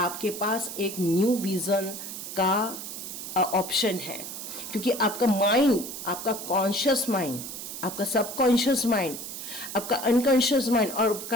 पास एक न्यू विज़न का ऑप्शन है। क्योंकि आपका माइंड, आपका कॉन्शियस माइंड, आपका सबकॉन्शियस माइंड, आपका अनकॉन्शियस माइंड और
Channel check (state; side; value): noise; right; hiss, 8 dB below the sound